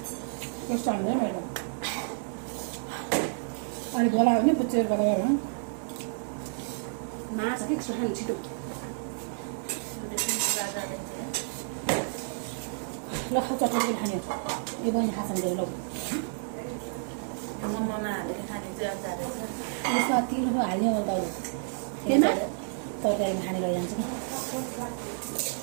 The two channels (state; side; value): silent; left; digital silence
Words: कस्तो हाल्दै मैले अलिक बोलायो भने पुच्चेर गरेर मास के खानु छिटो ल चटनी खाने यो बहिनी खान्छन् गएर ल मोमोमा हालेर खाने चाहिँ अचार रहेछ। यसमा तिलहरू हाल्ने हो त केमा तरकारीमा खाने लैजान्छ नि